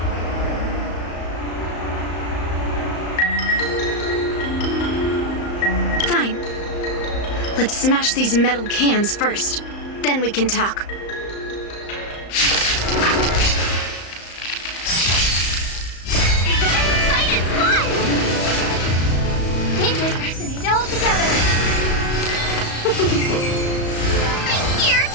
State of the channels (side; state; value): right; late; 35 ms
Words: Fine. Let's smash these metal cans first. Then we can talk. Fight is fun! Dangerous personage all together. I'm here.